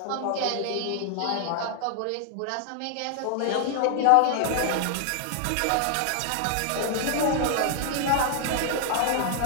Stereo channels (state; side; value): different; both; correlation 0.00